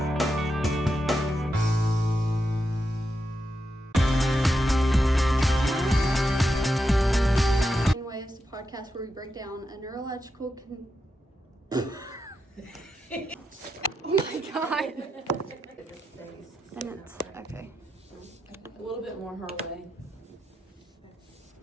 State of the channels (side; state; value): both; normal; correlation 0.86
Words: Brainwaves, the podcast where we break down a neurological Oh my god. Sentence. Okay. A little bit more her way.